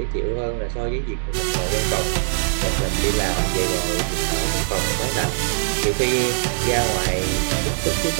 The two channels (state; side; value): silent; left; digital silence